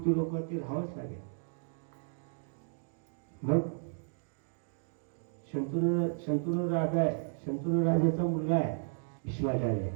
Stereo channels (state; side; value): silent; left; digital silence